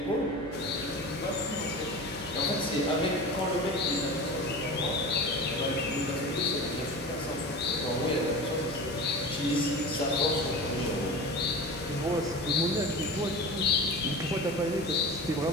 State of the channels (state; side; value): noise; right; hum, 17 dB below the sound